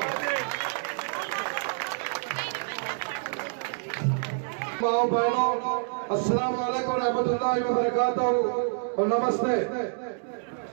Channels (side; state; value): left; silent; digital silence